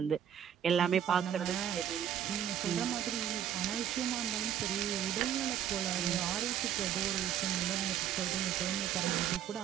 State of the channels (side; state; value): left; quieter; 9.9 dB